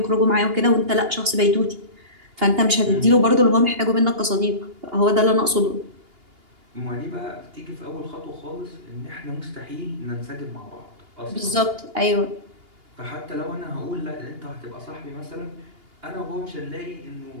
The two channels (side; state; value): left; late; 2.8 ms